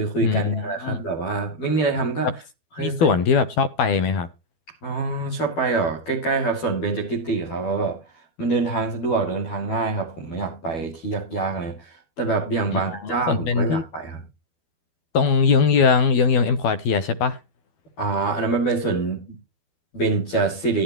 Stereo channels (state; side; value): late; right; 12 ms